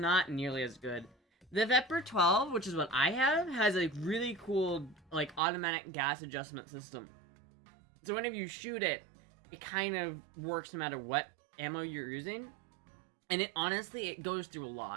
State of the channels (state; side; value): drops out; left; at 5.4 s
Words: nearly as good. The Viper 12, which is what I have, has a really cool, like, automatic gas adjustment system. So whenever you shoot it, it kind of works no matter what ammo you're using. And it goes through a